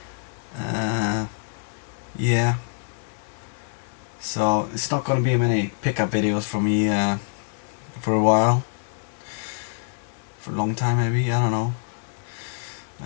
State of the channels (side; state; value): right; silent; digital silence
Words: Uh, yeah, so it's not gonna be many pickup videos for me for a while, for a long time maybe. I don't know.